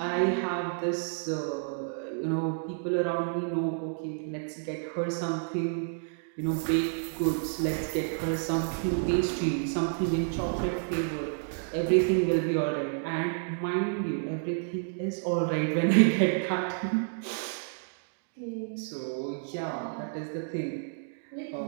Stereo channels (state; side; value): silent; left; digital silence